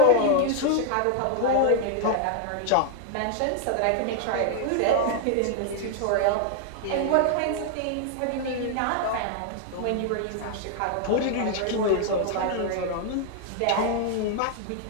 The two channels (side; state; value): both; different; correlation 0.00